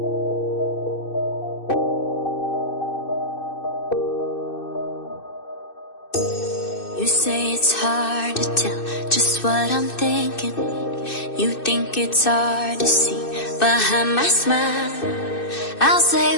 say it's hard to tell just what I'm thinking. You think it's hard to see behind my smile. I'll say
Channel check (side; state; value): right; late; 2.6 ms